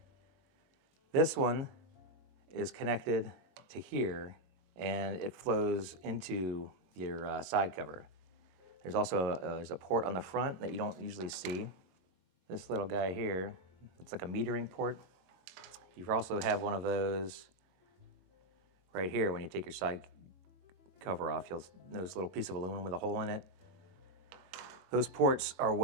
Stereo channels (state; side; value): late; left; 22 ms